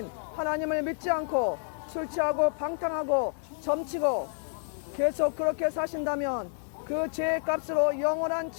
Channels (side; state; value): right; silent; digital silence